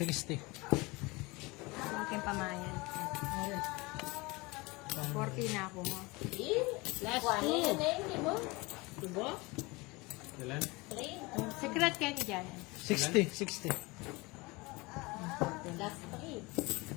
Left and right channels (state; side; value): quieter; right; 24.3 dB